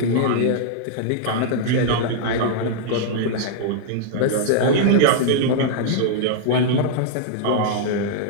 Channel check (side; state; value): both; different; correlation -0.01